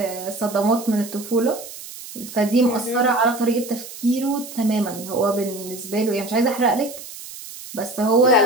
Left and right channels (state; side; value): noise; right; hiss, 14 dB below the sound